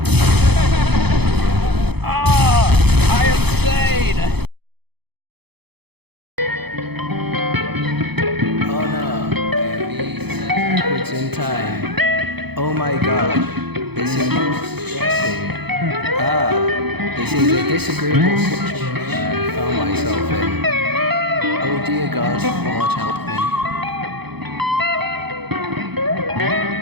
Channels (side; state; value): left; late; 0.98 ms